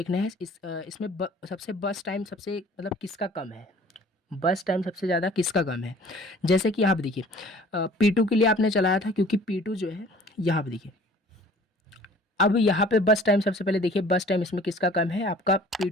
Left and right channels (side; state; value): both; normal; correlation 0.50